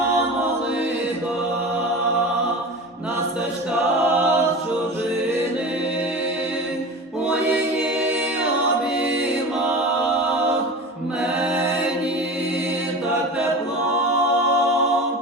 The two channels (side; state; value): both; normal; correlation 0.32